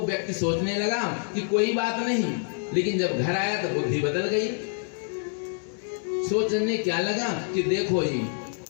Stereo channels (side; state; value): right; silent; 60 dB below the other